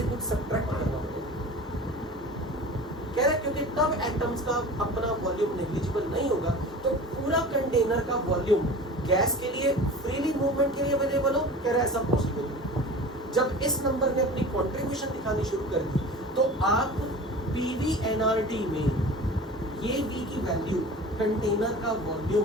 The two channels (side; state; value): both; normal; correlation 0.37